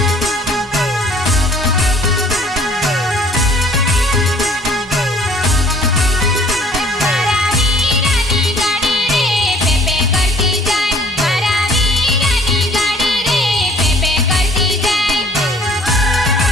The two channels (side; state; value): both; normal; correlation 0.55